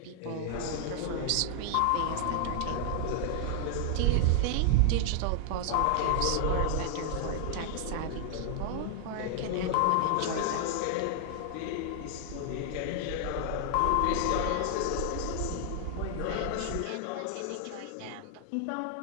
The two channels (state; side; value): different; both; correlation 0.00